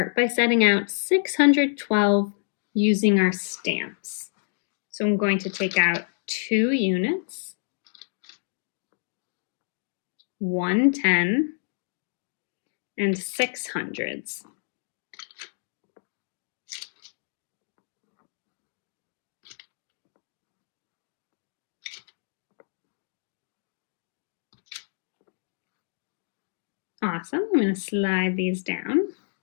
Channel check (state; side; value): silent; right; digital silence